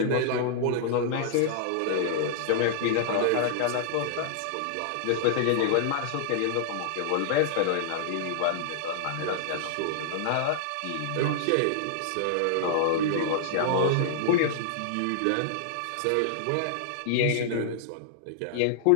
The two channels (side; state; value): both; different; correlation -0.01